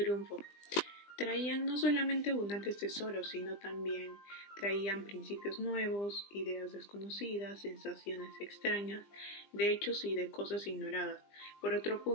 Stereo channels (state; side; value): late; right; 20 ms